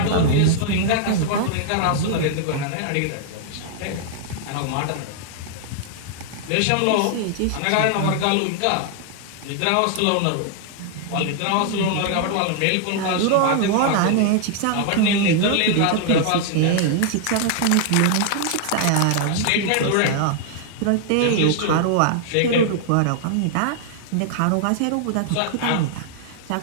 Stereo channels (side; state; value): both; different; correlation 0.00